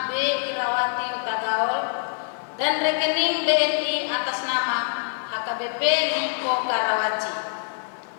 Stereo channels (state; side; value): silent; right; 62 dB below the other